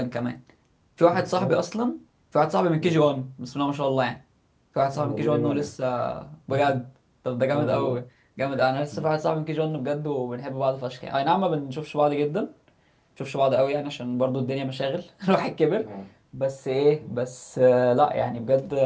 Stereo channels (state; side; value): identical; both; correlation 1.00